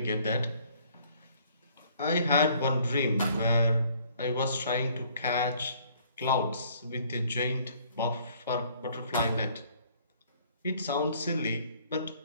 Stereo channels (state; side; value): inverted; both; correlation -0.60